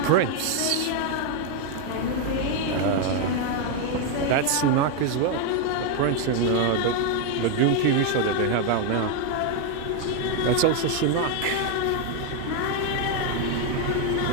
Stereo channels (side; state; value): both; different; correlation 0.01